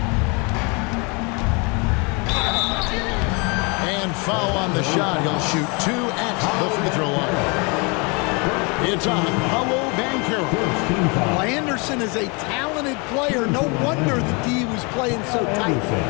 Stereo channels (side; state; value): right; quieter; 30.8 dB